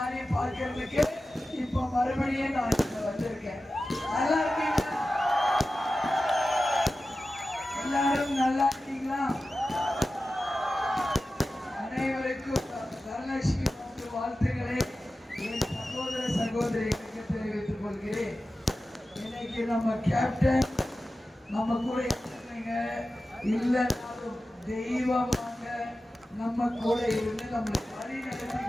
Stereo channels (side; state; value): both; normal; correlation 0.94